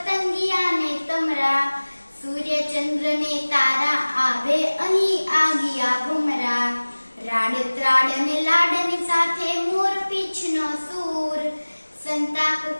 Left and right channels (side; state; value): both; inverted; correlation -1.00